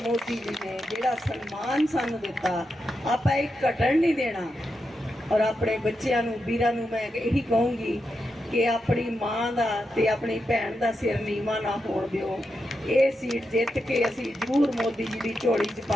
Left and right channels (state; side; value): normal; both; correlation 0.86